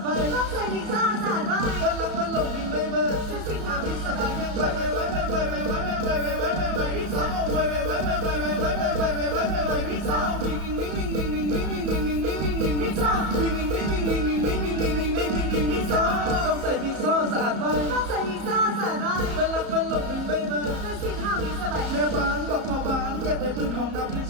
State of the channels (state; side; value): late; left; 34 ms